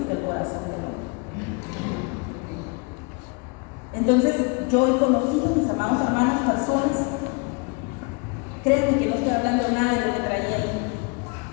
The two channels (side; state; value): right; quieter; 31.4 dB